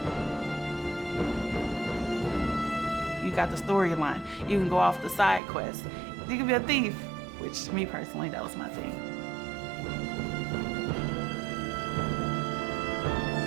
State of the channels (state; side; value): drops out; left; at 5.4 s